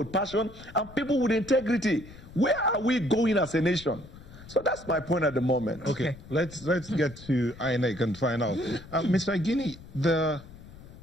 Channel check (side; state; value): left; noise; rumble, 18 dB below the sound